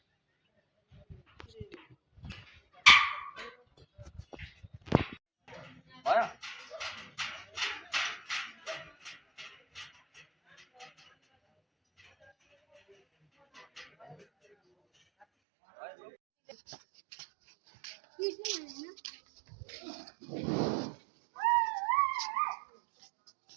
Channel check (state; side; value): drops out; left; at 15.2 s